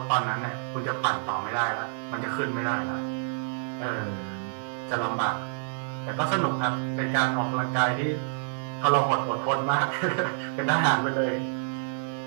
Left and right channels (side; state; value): left; silent; digital silence